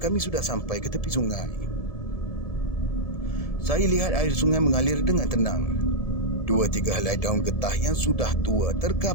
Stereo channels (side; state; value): right; late; 1.7 ms